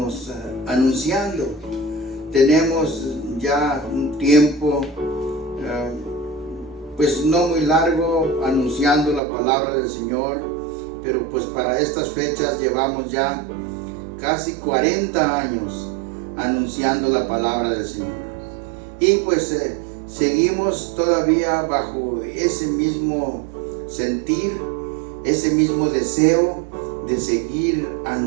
anunciando. Tenemos ya un tiempo pues no muy largo anunciando la palabra del Señor, pero pues para estas fechas llevamos ya casi 40 años anunciando la palabra del Señor. Y pues seguimos todavía bajo ese mismo sentir, ese mismo deseo de seguir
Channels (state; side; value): drops out; left; at 9.2 s